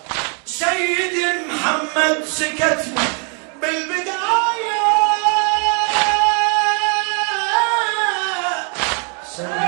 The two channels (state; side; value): quieter; left; 37.6 dB